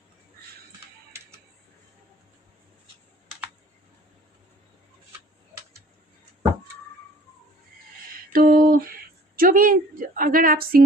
तो जो भी, अगर आप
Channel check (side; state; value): both; normal; correlation 0.52